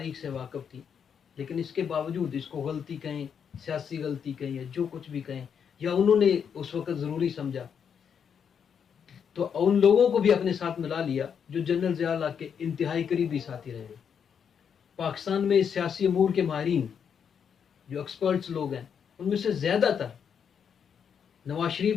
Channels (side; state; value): right; quieter; 7.4 dB